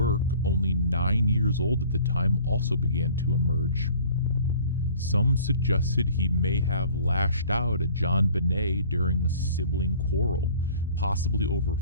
only 9 years old at the time, also began to emerge. Some suggested he may have lashed out at JonBenét during a sibling quarrel, possibly over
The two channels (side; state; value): both; inverted; correlation -0.49